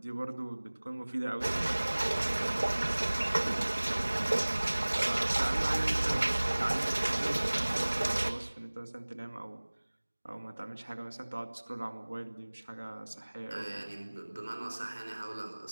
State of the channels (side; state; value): both; inverted; correlation -1.00